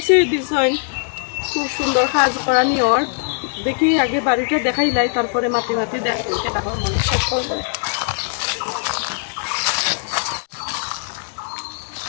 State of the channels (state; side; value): silent; right; 57 dB below the other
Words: দিছেন খুব সুন্দর কাজ করা নিয়র দেখি আগে বাড়িটা দেখাইলাই তারপরে মাটি মাটি দেখো মনে শেষ করবো